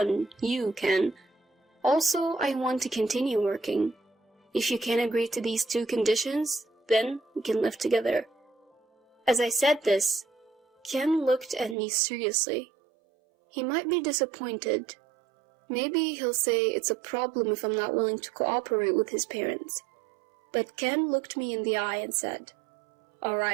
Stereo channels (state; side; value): drops out; left; at 11.8 s